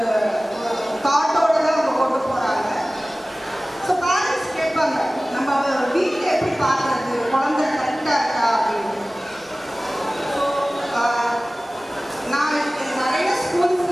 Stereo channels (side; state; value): both; normal; correlation 0.98